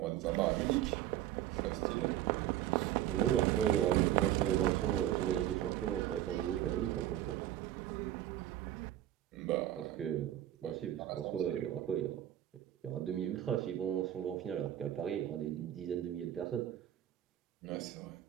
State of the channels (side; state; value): left; quieter; 12.5 dB